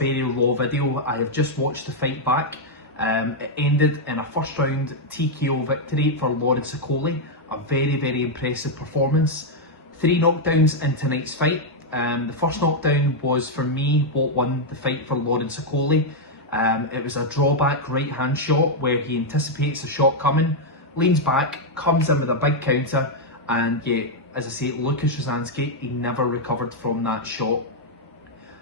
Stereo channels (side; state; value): both; normal; correlation -0.01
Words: raw video. I have just watched the fight back. It ended in a first round TKO victory for Okolie. A very impressive performance. 3 knockdowns in tonight's fight. The first knockdown was for me what won the fight for Okolie. It was a drawback right hand shot where he anticipates a shot coming, leans back, comes in with a big counter, and yeah, as I say, Lukasz Rozanski, he never recovered from that shot.